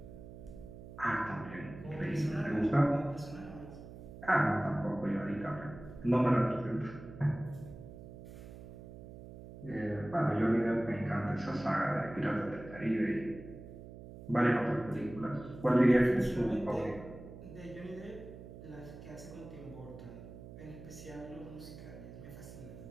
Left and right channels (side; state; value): right; noise; hum, 14 dB below the sound